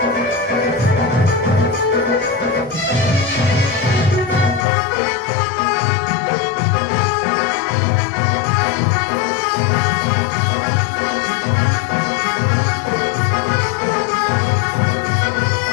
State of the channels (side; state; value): right; drops out; at 4.7 s